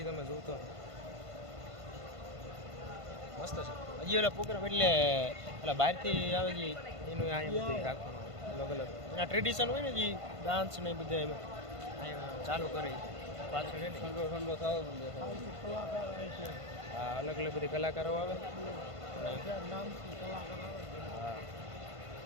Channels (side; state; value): left; late; 1.5 ms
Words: તમે જોતો મસ્ત છે. હજી ઓલા પ્રોગ્રામ એટલે પેલા બહારથી આવે છે એનું અહીંયા બધું રાખવાનું અલગ અલગ એના ટ્રેડિશન હોય ને જે ડાન્સ ને બધા અહીંયા ચાલુ કરે પાછળ ઠંડો થાવ. હા અલગ અલગ બધી કલાકારો આવે. હા